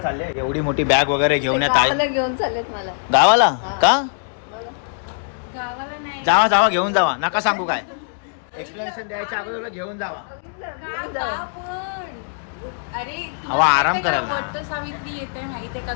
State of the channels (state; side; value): silent; right; digital silence